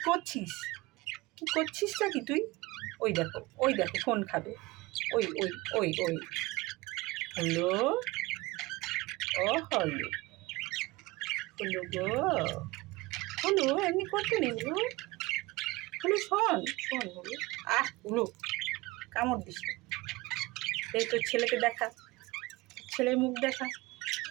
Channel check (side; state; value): left; quieter; 21.5 dB